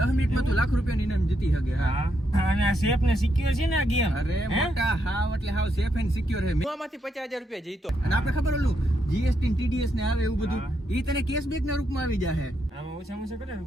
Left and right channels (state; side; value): normal; both; correlation 0.79